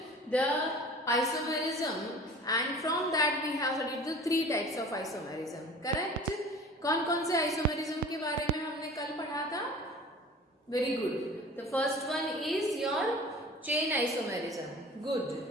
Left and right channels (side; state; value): both; normal; correlation 0.42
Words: isomerism, and from that we have studied the three types of isomerism. Correct? कौन कौन से isomerism के बारे में हमने कल पढ़ा था? Very good. The first one is your chain isomerism. Good.